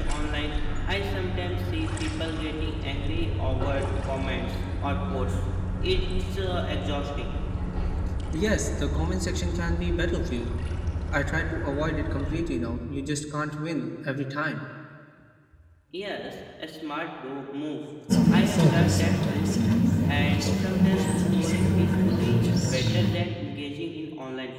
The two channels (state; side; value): identical; both; correlation 1.00